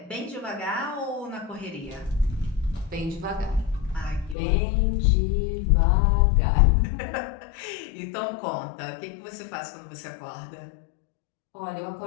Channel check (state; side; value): drops out; right; at 4.4 s